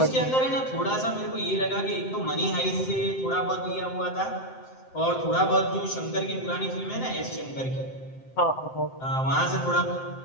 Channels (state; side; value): late; right; 7.7 ms